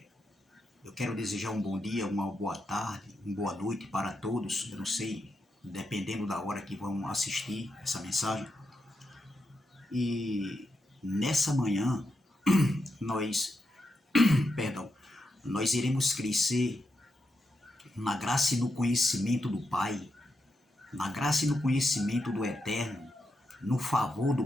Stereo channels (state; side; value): normal; both; correlation 0.85